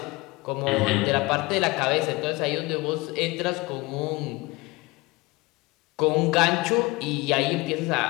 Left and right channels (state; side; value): quieter; right; 22.8 dB